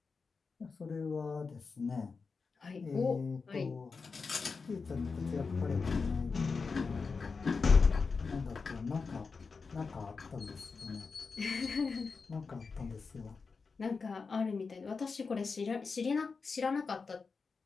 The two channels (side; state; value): right; quieter; 4.8 dB